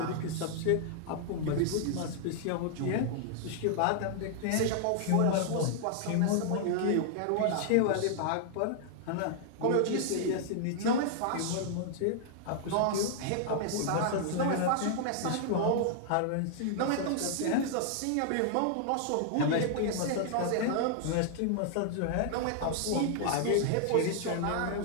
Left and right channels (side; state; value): both; different; correlation -0.01